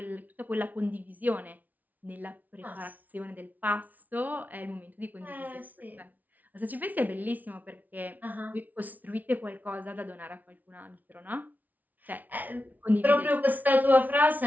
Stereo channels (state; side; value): late; left; 0.078 ms